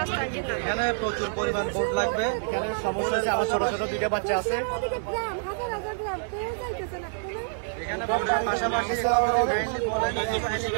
এখানে প্রচুর পরিমাণ বোট লাগবে। এখানে সমস্যা আছে, আমার ছোট ছোট 2টা বাচ্চা আছে।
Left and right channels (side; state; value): left; silent; 57 dB below the other